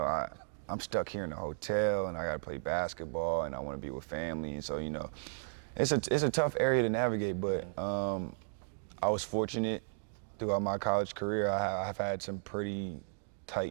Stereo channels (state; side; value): silent; left; digital silence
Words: I'm stuck here in the hotel and I gotta play basketball and I wanna be with family. And so, you know, it's a tough area to navigate, but I was fortunate throughout my college career. I've had some pretty